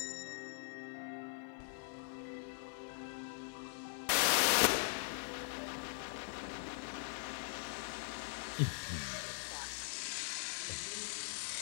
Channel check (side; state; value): right; silent; 50 dB below the other